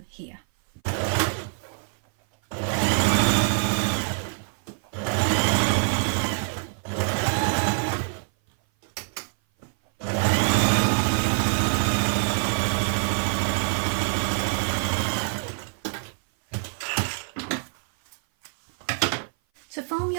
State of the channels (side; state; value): left; silent; 57 dB below the other